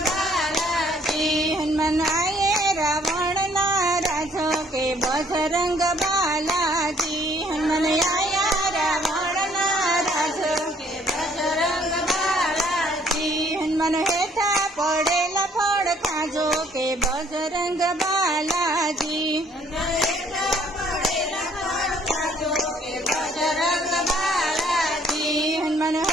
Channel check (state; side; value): normal; both; correlation 0.62